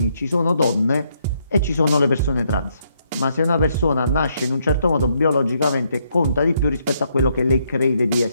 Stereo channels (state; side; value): inverted; both; correlation -0.74